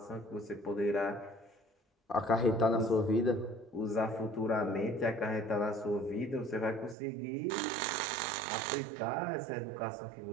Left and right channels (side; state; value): left; drops out; at 7.0 s